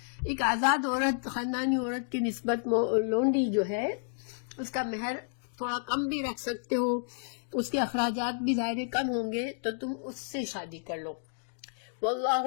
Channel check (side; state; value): right; silent; digital silence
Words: ایک آزاد عورت، خاندانی عورت کی نسبت لونڈی جو ہے اس کا مہر تھوڑا کم بھی رکھ سکتے ہو، اس کے اخراجات بھی ظاہر کم ہوں گے، تو تم اس سے شادی کر لو.